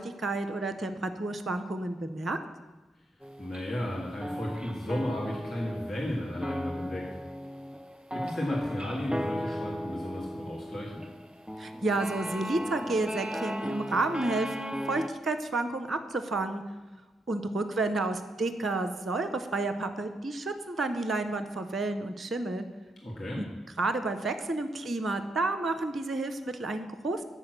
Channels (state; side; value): normal; both; correlation 0.80